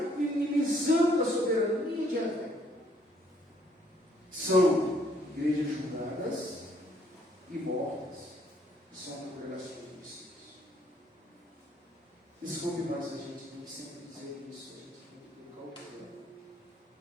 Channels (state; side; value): normal; both; correlation 0.66